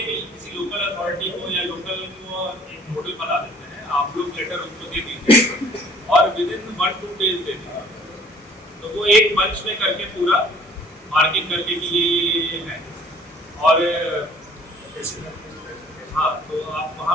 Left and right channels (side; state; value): both; normal; correlation 0.54